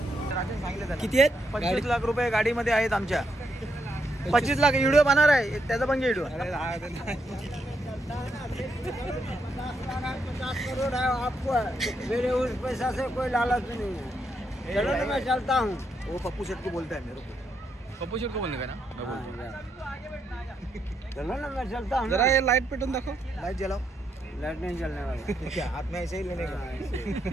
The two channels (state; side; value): normal; both; correlation 0.79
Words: किती आहेत? 25 लाख रुपये गाडीमध्ये आहेत आमच्या. 25 लाख व्हिडिओ बनणार आहे. त्याचा पण व्हिडिओ. 50 करोड़ है आपको. मेरे उस पैसा से कोई लालच नहीं है. चलो ना मैं चलता हूँ. वो पप्पू शेठ को बोलता है मेरे को. पप्पू शेठ को बोलने का ना. चलो ना मैं चलता हूँ. जरा ये लाइट पेटून दाखव. लाइट जलाओ. लाइट नहीं चलने वाला क्या हाथ में ऐसे ही लेने का